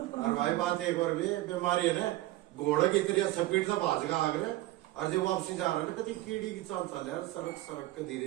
और भाई बात एक और भी बीमारी है ना, घोड़े की तरह स्पीड से भाज का आगे और जब वापसी जा रहा है ना, कभी कीड़ी की चाल चल रहा है, सड़क के धीरे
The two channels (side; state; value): left; quieter; 17.1 dB